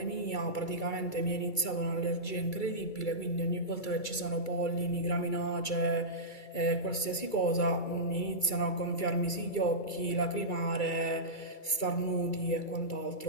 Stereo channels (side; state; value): right; late; 2.3 ms